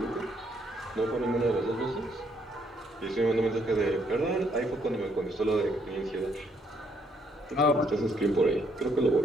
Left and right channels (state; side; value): normal; both; correlation 0.70